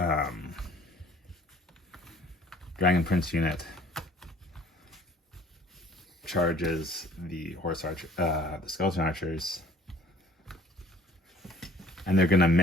Dragon Prince unit charges the the Skeleton Archers, and they're gonna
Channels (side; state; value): both; normal; correlation 0.54